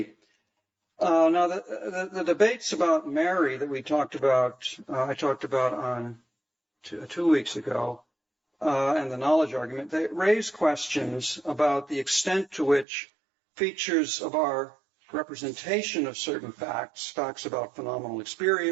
Now, the debates about Mary that we talked about, I talked about on 2 weeks ago, and the knowledge argument, they raise questions about the extent to which features of our representation of certain facts about phenomenal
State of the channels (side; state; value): left; drops out; at 12.9 s